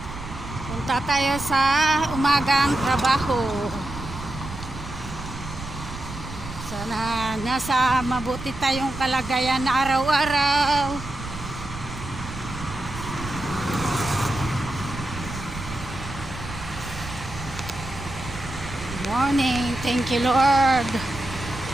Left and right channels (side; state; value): right; noise; rumble, 11 dB below the sound